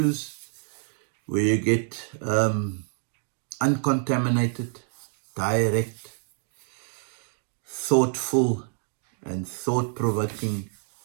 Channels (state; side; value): silent; left; 56 dB below the other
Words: where you get uncontaminated, direct, thoughtful, and thought provoking